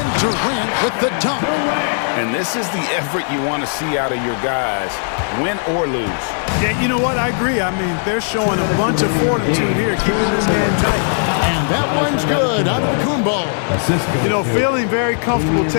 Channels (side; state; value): right; silent; digital silence